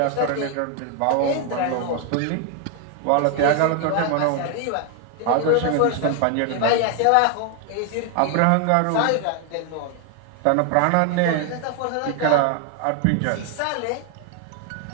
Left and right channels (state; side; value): different; both; correlation 0.01